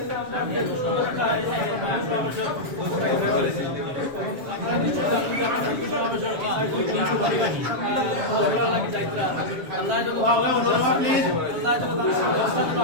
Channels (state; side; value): late; left; 7.3 ms